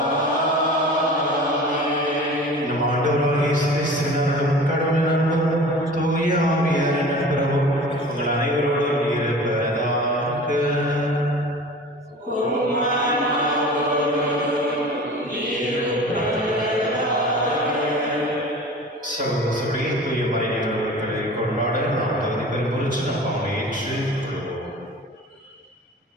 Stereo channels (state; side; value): normal; both; correlation 0.40